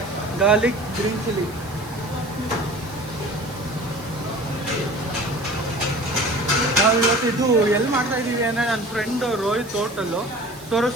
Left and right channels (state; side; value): noise; right; hiss, 20 dB below the sound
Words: garlic, green chilli. ನಾವು ಇವತ್ತು ಇದು ಎಲ್ಲಿ ಮಾಡ್ತಾ ಇದ್ದೀವಿ ಅಂದರೆ ನನ್ನ ಫ್ರೆಂಡ್ ರೋಹಿತ್ ಹೋಟೆಲ್ಲು